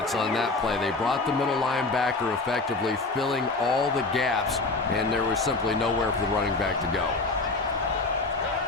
on that play. They brought the middle linebacker effectively filling all the gaps, and there was simply nowhere for the running back to go.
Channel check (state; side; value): quieter; right; 3.4 dB